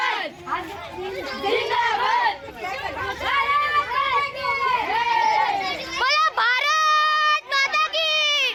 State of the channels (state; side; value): identical; both; correlation 1.00